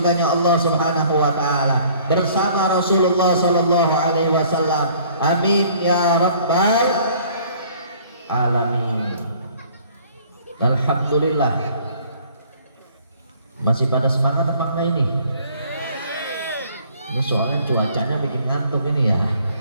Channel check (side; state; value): both; inverted; correlation -0.56